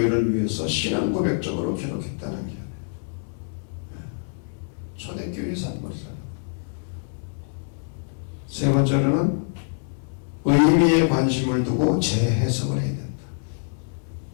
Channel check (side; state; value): right; silent; digital silence